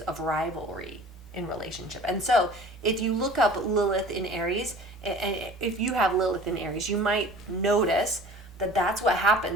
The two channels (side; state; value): both; normal; correlation 0.44